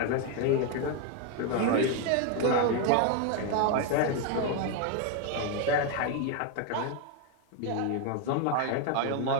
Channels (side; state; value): both; different; correlation 0.01